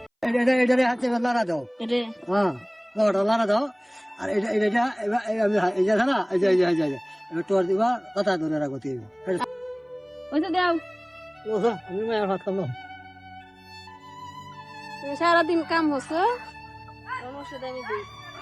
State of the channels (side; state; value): both; identical; correlation 1.00